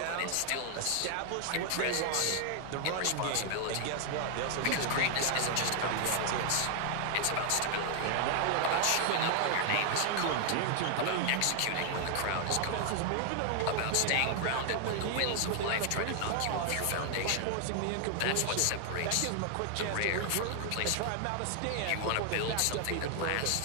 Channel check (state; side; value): different; both; correlation 0.00